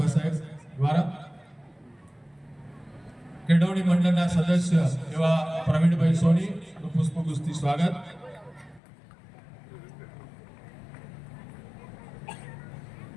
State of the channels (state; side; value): drops out; right; at 8.8 s